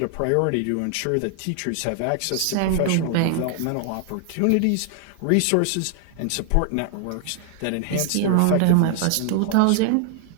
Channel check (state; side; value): different; both; correlation 0.00